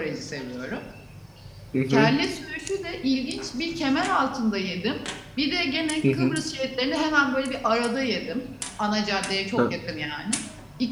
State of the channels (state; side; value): identical; both; correlation 1.00